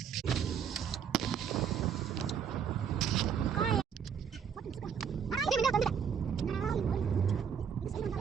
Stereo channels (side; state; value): left; quieter; 7.5 dB